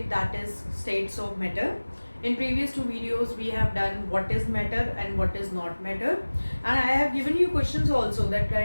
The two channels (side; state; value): both; inverted; correlation -1.00